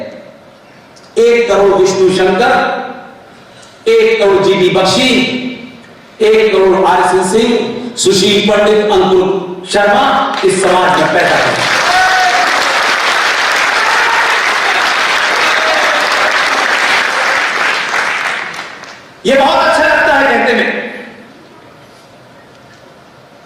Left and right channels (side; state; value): both; identical; correlation 1.00